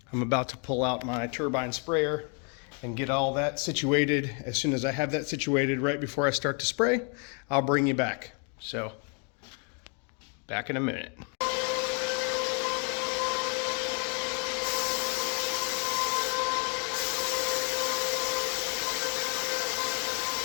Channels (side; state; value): right; quieter; 37.7 dB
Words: I'm about to pull out my turbine sprayer and get all that situated. As soon as I have that situated right before I start to spray, I'll bring you back. So, back in a minute.